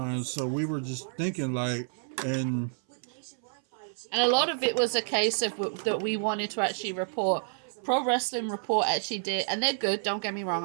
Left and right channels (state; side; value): silent; left; 58 dB below the other